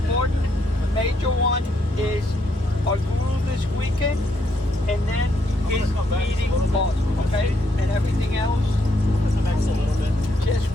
The major one is our guru this weekend, and then his meeting boss, okay? And everything else just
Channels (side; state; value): both; normal; correlation 0.75